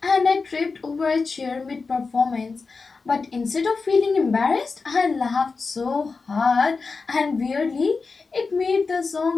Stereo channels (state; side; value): quieter; right; 4.4 dB